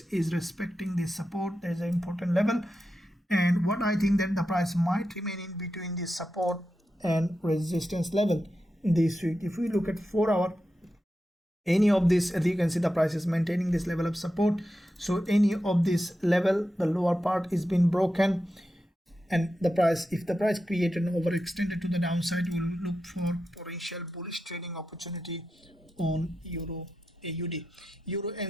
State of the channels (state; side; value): normal; both; correlation 0.89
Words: is respecting this support. There's an important level, and what I think that the price might remain in between this support and resistance level this week. If we look at 4 hour, any of this, as you can see, the price is maintaining this level of support. So any of this level, the lower part is being broken, and the price, if the price created an overextended to the downside, we will look for potential bullish trading opportunity on EURAUD.